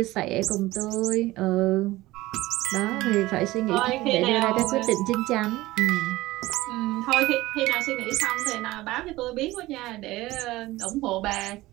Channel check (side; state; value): left; quieter; 18.2 dB